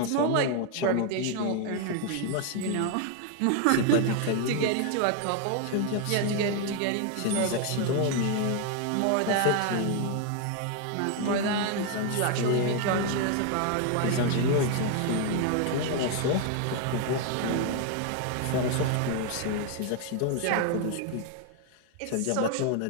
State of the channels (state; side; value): different; both; correlation 0.01